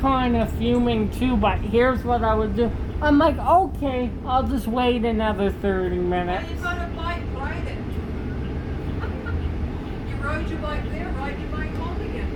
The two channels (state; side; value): identical; both; correlation 1.00